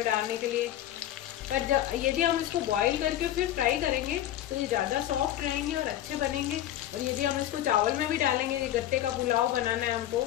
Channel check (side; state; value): right; quieter; 12.6 dB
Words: डालने के लिए। पर जब यदि हम इसको बॉईल करके फिर फ्राई करेंगे तो ये ज़्यादा सॉफ्ट रहेंगे और अच्छे बनेंगे। और यदि हम इसको चावल में भी डालेंगे, ये गट्टे का पुलाव बनाना है हमको,